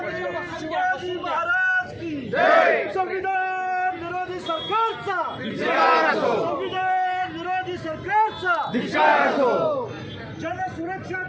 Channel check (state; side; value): identical; both; correlation 1.00